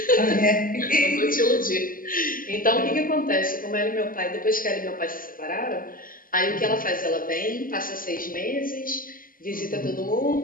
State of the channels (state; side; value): late; right; 0.41 ms